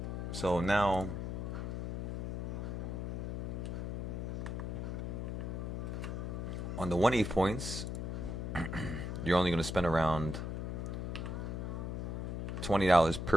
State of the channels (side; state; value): left; noise; hum, 3 dB below the sound